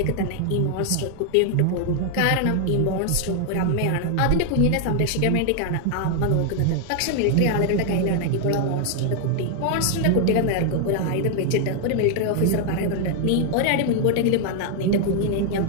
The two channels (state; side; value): different; both; correlation 0.00